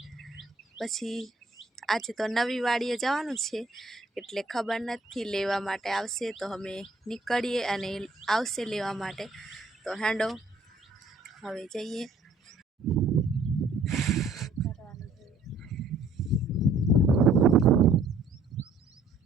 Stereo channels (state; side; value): quieter; left; 3.1 dB